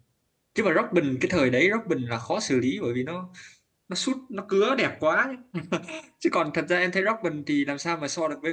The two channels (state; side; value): identical; both; correlation 1.00